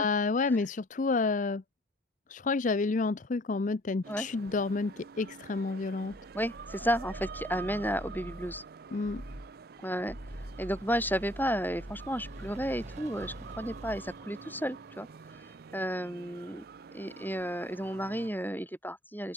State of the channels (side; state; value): both; normal; correlation 0.57